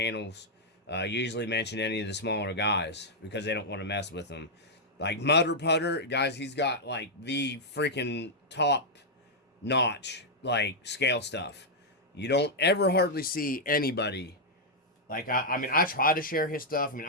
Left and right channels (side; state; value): both; normal; correlation -0.05